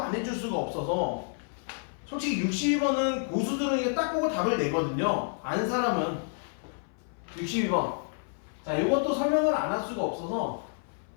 해줄 수가 없어서 솔직히 62번은 고수들은 이게 딱 보고 답을 내거든요. 안 사람은 62번. 자, 이것도 설명을 안 할 수가 없어서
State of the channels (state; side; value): silent; right; 57 dB below the other